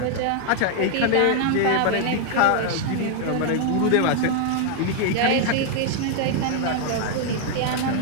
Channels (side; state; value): both; different; correlation 0.00